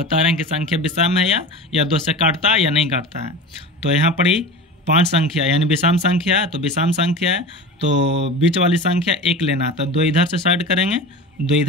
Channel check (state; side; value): normal; both; correlation 0.32